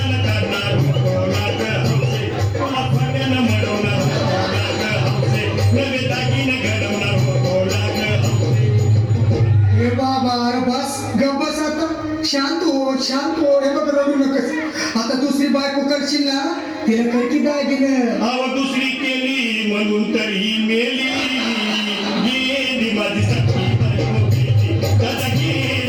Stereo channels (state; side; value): identical; both; correlation 1.00